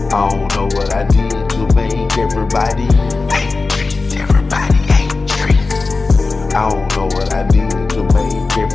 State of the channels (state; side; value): quieter; right; 3.9 dB